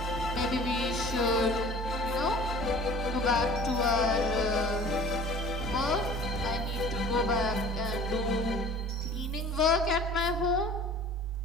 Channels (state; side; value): normal; both; correlation 0.45